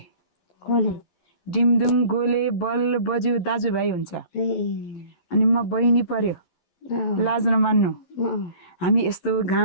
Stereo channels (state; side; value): late; right; 11 ms